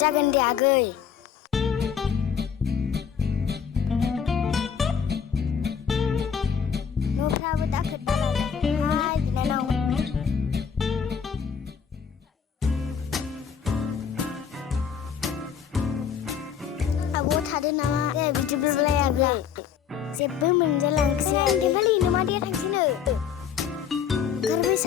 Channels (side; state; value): right; quieter; 7.5 dB